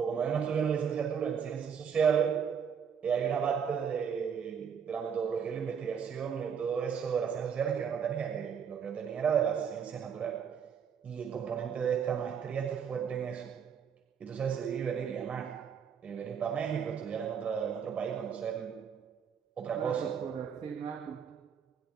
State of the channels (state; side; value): quieter; left; 7.3 dB